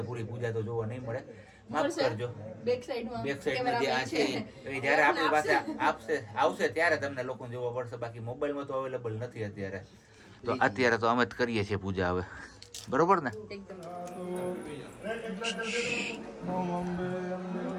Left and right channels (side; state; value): both; identical; correlation 1.00